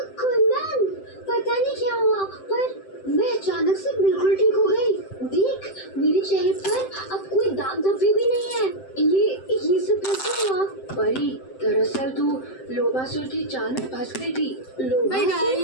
कुंदन, पता नहीं क्या हुआ, पर मैं अचानक से बिल्कुल ठीक हो गई। देख, मेरे चेहरे पर अब कोई दाग धब्बे भी नहीं है। ये सब कैसे हुआ? परी, दरअसल तू लोभासुर की चाल में फंस गई थी।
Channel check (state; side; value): late; right; 7.7 ms